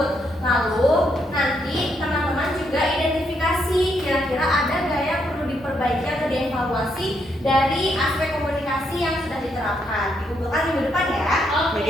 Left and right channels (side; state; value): both; normal; correlation 0.76